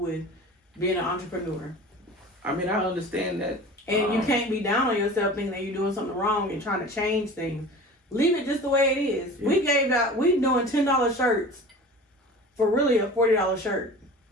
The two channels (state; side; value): normal; both; correlation 0.38